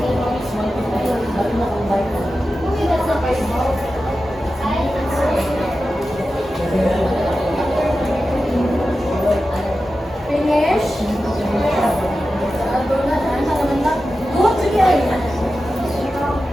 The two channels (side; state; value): both; normal; correlation 0.93